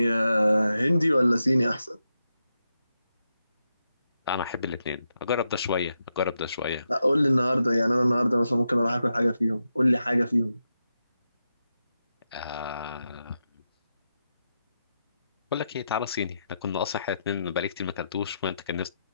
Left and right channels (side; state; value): both; inverted; correlation -0.86